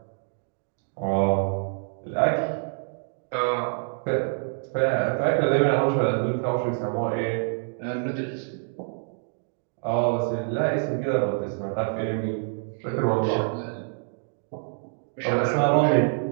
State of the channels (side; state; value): left; silent; 61 dB below the other